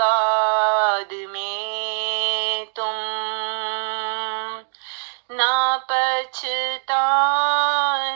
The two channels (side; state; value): left; silent; 64 dB below the other